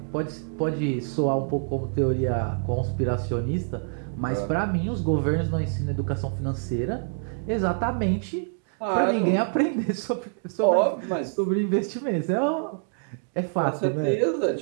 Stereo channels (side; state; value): left; silent; digital silence